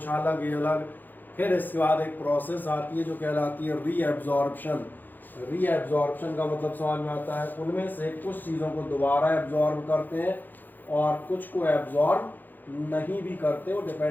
अलग ये अलग। फिर इसके बाद एक प्रोसेस आती है जो कहलाती है रीएब्जॉर्प्शन। रीएब्जॉर्प्शन का मतलब समझ में आता है, उनमें से कुछ चीज़ों को दोबारा एब्जॉर्ब करते हैं और कुछ को एब्जॉर्ब नहीं भी करते। वो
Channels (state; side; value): late; right; 0.087 ms